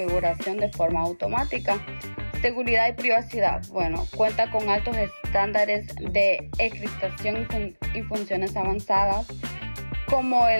de forma automática. Seguridad y privacidad. Bueno, cuenta con altos estándares de encriptación y funciones avanzadas como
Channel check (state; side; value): inverted; both; correlation -1.00